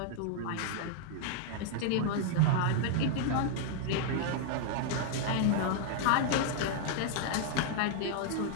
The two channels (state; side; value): different; both; correlation -0.01